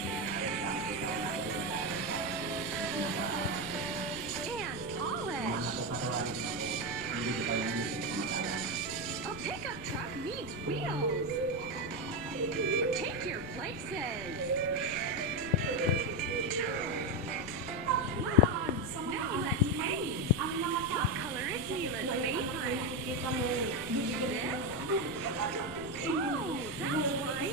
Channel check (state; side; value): noise; left; rumble, 16 dB below the sound